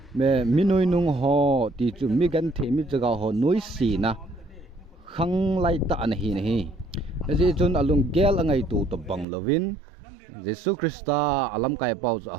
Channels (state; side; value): drops out; left; at 9.2 s